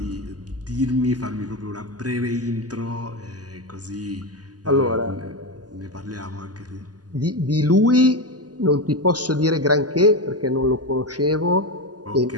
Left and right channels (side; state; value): left; late; 0.68 ms